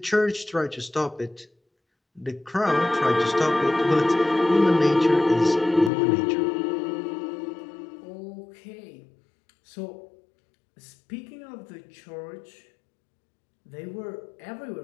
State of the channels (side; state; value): right; drops out; at 5.9 s